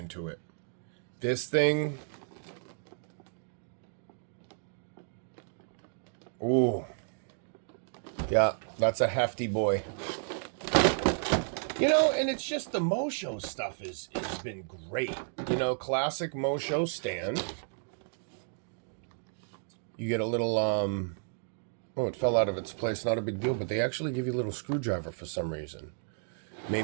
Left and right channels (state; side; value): silent; left; digital silence